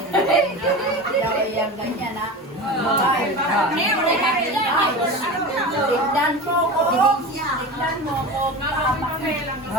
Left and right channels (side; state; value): both; normal; correlation 0.29